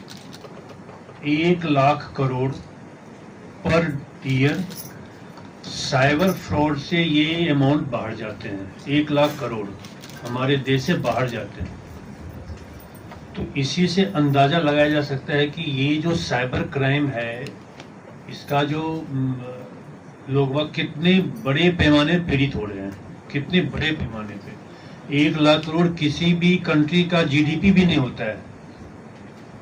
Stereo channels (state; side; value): identical; both; correlation 1.00